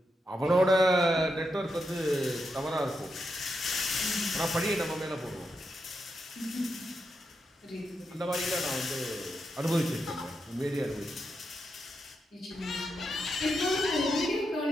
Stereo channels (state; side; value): normal; both; correlation 0.85